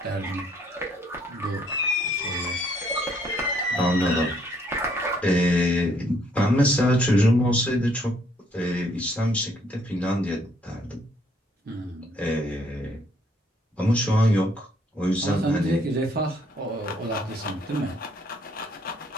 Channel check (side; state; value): both; normal; correlation 0.67